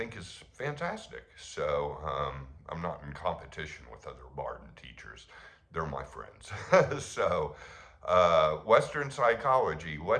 is fantastic. So I'm not in competition with other Bardon teachers. They're my friends. So Western psychology,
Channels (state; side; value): identical; both; correlation 1.00